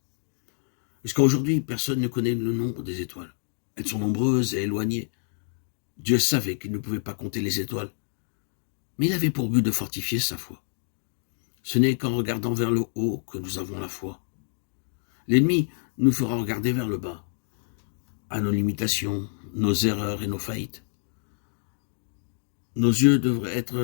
Jusqu'à aujourd'hui, personne ne connaît le nombre des étoiles. Elles sont nombreuses et éloignées. Dieu savait qu'il ne pouvait pas compter les étoiles, mais il avait pour but de fortifier sa foi. Ce n'est qu'en regardant vers le haut que nous avons la foi. L'ennemi nous fera regarder vers le bas, à nos limitations, nos erreurs et nos faillites. Nos yeux devraient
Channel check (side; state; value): right; silent; digital silence